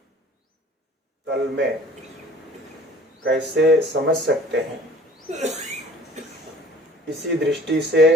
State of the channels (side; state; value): both; normal; correlation 0.49